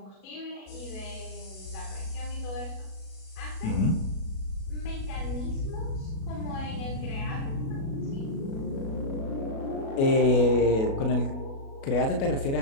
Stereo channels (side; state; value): right; late; 36 ms